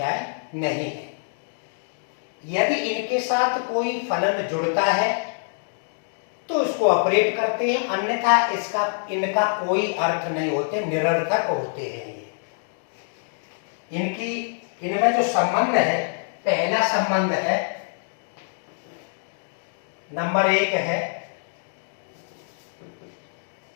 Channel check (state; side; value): silent; right; digital silence